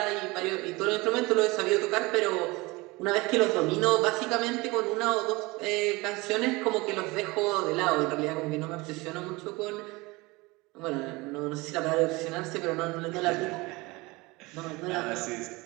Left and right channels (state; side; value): quieter; left; 23.4 dB